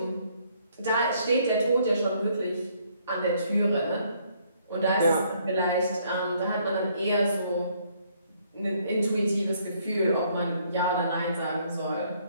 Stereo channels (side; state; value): both; inverted; correlation -0.67